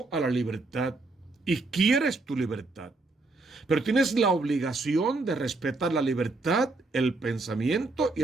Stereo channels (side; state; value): left; quieter; 3.4 dB